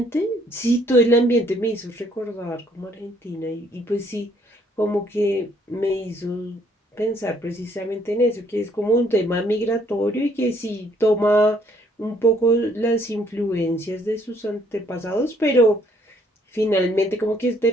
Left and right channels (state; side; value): normal; both; correlation 0.66